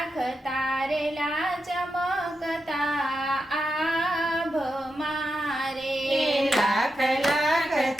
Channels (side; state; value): both; normal; correlation 0.87